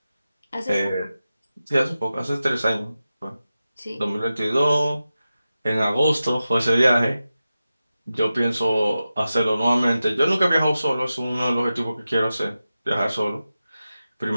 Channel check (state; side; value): inverted; both; correlation -0.93